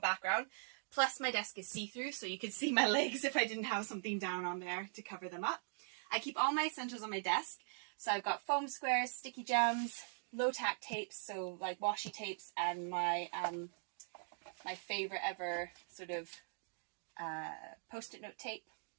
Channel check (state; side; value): silent; left; digital silence